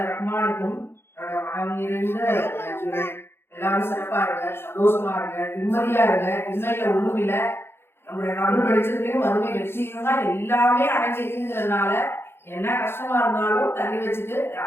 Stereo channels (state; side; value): late; right; 0.11 ms